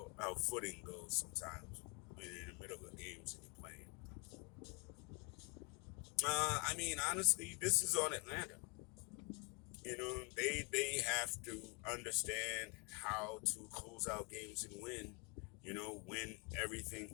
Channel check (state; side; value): quieter; right; 31.4 dB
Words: how footing goes sometimes when you're in the middle of games and you're playing. I mean, honestly, this is on Atlanta. You know, they have to understand how to close out games and win. You know, when everything